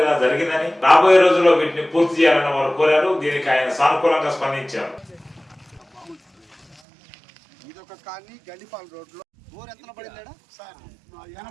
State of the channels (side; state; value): left; drops out; at 6.8 s